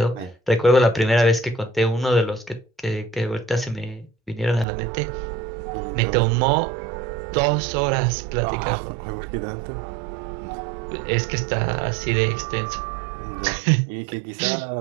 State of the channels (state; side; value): drops out; left; at 4.7 s